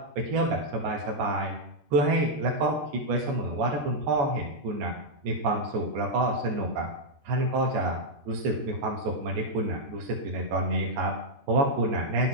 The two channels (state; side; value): late; left; 13 ms